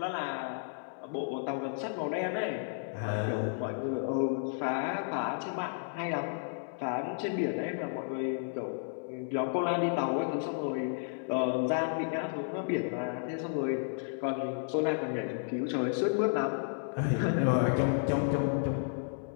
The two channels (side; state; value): right; silent; digital silence